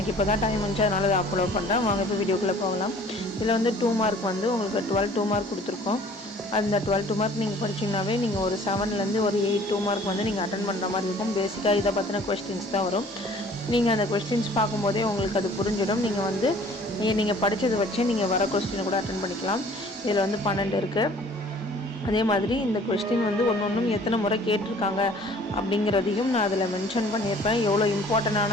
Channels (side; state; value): both; normal; correlation 0.52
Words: இப்போ தான் டைம் வந்துச்சு, அதனால் அதை அப்லோட் பண்ணுறேன். வாங்க இப்போ வீடியோக்குள்ளே போகலாம். இதில் 2 மார்க் உங்களுக்கு 12 2 மார்க் கொடுத்துருக்கோம். அந்த 12 2 மார்க் நீங்கள் படிச்சிங்கனாவே நீங்கள் ஒரு 7லேருந்து ஒரு 8 2 மார்க் நீங்கள் அட்டன் பண்ணுற மாதிரி இருக்கும். பேசிக்காக இதை பற்றின கொஸ்டின்ஸ் தான் வரும். நீங்கள் அந்த கொஸ்டின்ஸ் பார்க்கும்போதே உங்களுக்கு அது புரிஞ்சிடும். நீங்கள் படித்ததை வச்சு நீங்கள் வர கொஸ்டினை கூட அட்டன் பண்ணிக்கலாம். இதில் 12 இருக்குது. அதே மாதிரி இந்த கொஸ்டின் ஒன்றும் எத்தனை முறை கேட்டிருக்காங்க அப்படிங்கிறதையும் நான் அதில் மென்ஷன் பண்ணியிருப்பேன். எவ்வளோ